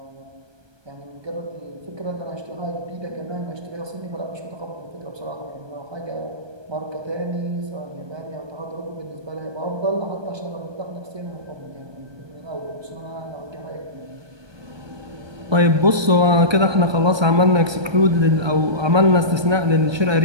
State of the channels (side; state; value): left; late; 1.2 ms